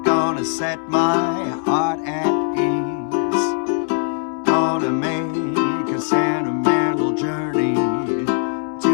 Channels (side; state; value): right; silent; 62 dB below the other